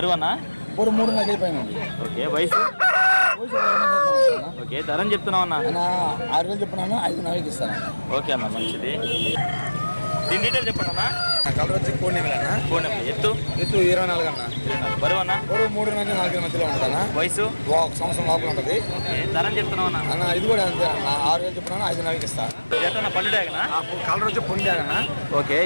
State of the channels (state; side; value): inverted; both; correlation -1.00